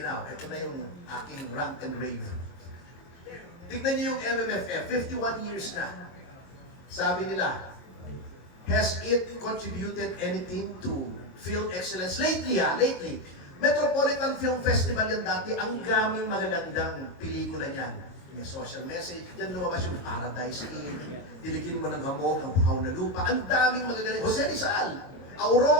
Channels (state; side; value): late; right; 22 ms